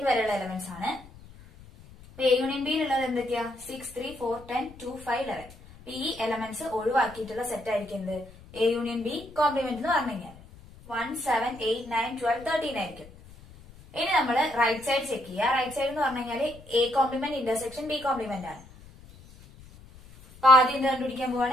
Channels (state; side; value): noise; left; rumble, 21 dB below the sound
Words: വരെയുള്ള എലമെന്റ്സ് ആണ്. എ യൂണിയൻ ബിയിലുള്ളത് എന്തൊക്കെയാ? 6 3 4 10 2 5 11. ഈ എലമെന്റ്സ് ഒഴിവാക്കിയിട്ടുള്ള സെറ്റ് ആയിരിക്കും എന്ത്? എ യൂണിയൻ ബി കോംപ്ലിമെന്റ് എന്ന് പറഞ്ഞു കഴിഞ്ഞാൽ 1 7 8 9 12 13 ആയിരിക്കും. ഇനി നമ്മൾ റൈറ്റ് സൈഡ് ചെക്ക് ചെയ്യുക. റൈറ്റ് സൈഡ് എന്ന് പറഞ്ഞു കഴിഞ്ഞാൽ A complement intersection B complement ആണ്. അപ്പൊ ആദ്യം എന്ത് കണ്ടുപിടിക്കാൻ